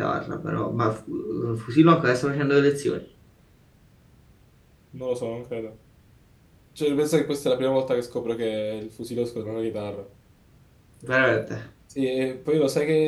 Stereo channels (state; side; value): identical; both; correlation 1.00